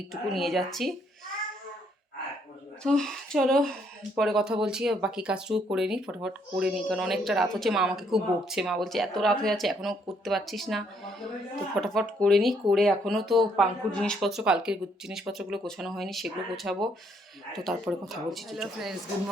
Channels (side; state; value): both; normal; correlation 0.70